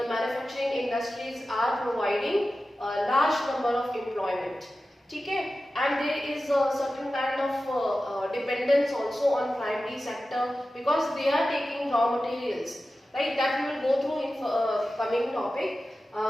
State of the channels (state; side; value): normal; both; correlation 0.94